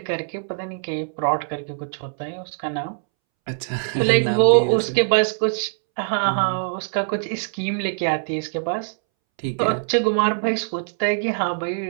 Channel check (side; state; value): left; silent; 64 dB below the other